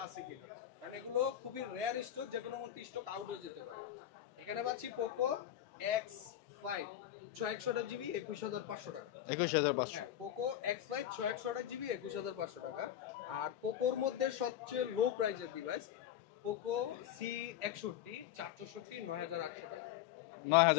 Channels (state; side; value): quieter; right; 11.6 dB